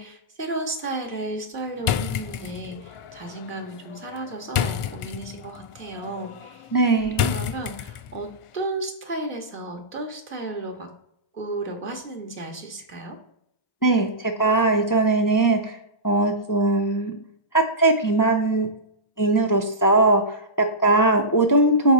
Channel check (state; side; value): late; right; 1.4 ms